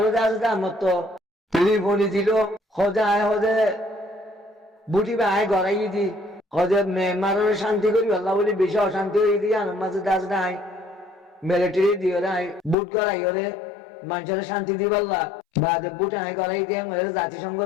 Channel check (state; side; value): drops out; right; at 12.8 s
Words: দাস আমার তো রিফনি দিল হজে আয় হজে বুটি বা আয় গড়াই দি হজে মেমারের শান্তি করি আল্লাহ বলি বেশি অশান্তি হয়ে দি আনার মাঝে দাস নাই মিলিটারি দিও নাই বুট গড়াই ওরে মানুষের শান্তি দি পাল্লা বা যে বুট আয় গড়াই দিয়ে